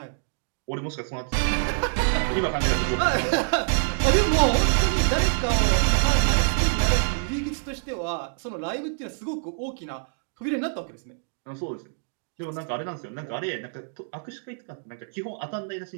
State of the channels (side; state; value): left; silent; 61 dB below the other